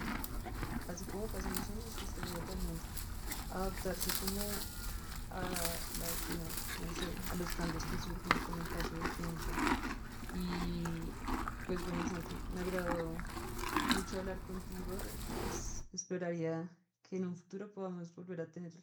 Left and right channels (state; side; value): identical; both; correlation 1.00